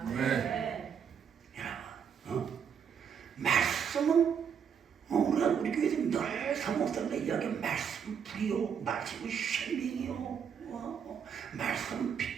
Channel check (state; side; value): quieter; left; 7.4 dB